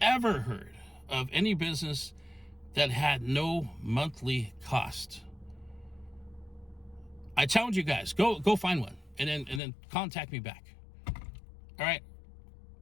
heard of any business that had no monthly cost? I challenge you guys, go find one and then contact me back. All right?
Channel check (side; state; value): right; drops out; at 9.6 s